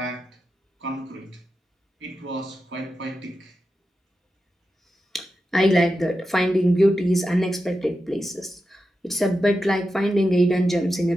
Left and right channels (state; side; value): normal; both; correlation 0.90